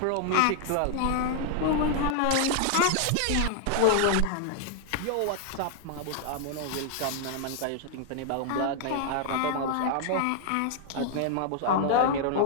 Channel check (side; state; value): both; different; correlation 0.00